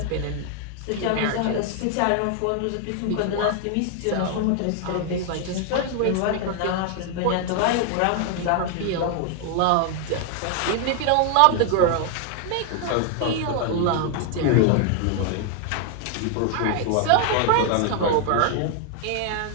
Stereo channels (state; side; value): different; both; correlation 0.00